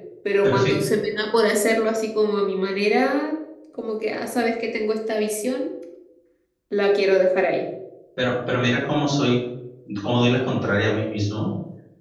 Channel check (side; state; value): both; identical; correlation 1.00